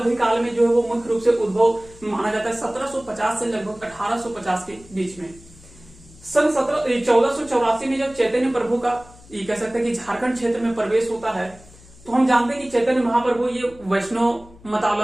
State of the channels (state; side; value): noise; left; hum, 23 dB below the sound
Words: में जो है वो मुख्य रूप से उद्भव माना जाता है 1750 से लगभग 1850 के बीच में। सन 1484 में जब चैतन्य प्रभु का ये कह सकते हैं कि झारखंड क्षेत्र में प्रवेश होता है, तो हम जानते हैं कि चैतन्य महाप्रभु ये वैष्णव